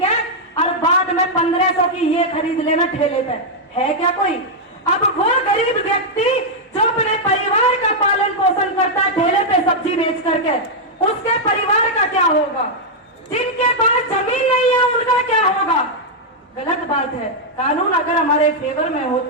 और बाद में 1500 की ये खरीद लेना ठेले पे, है क्या कोई? अब वो गरीब व्यक्ति जो अपने परिवार का पालन पोषण करता है ठेले पे सब्जी बेच करके, उसके परिवार का क्या होगा? जिनके पास जमीन नहीं है उनका क्या होगा? गलत बात है। कानून अगर हमारे फेवर में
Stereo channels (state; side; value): normal; both; correlation -0.04